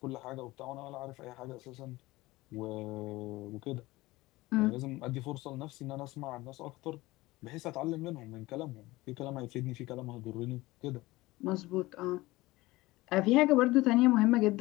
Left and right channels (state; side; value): quieter; right; 19.7 dB